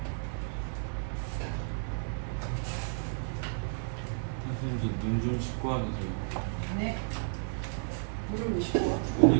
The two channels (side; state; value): left; silent; 56 dB below the other